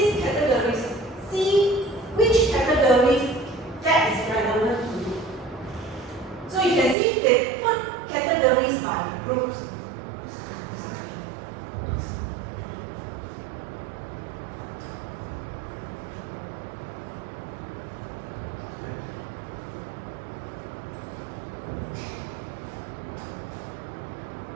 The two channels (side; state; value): left; drops out; at 7.0 s